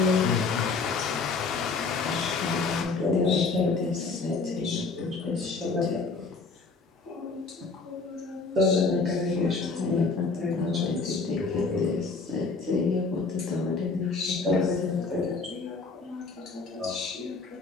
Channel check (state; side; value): quieter; right; 4.2 dB